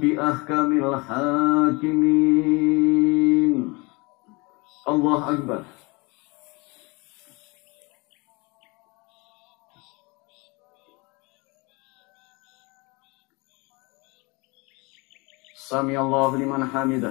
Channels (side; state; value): right; quieter; 27.0 dB